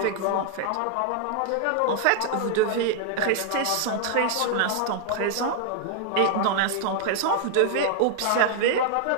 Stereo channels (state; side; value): different; both; correlation 0.00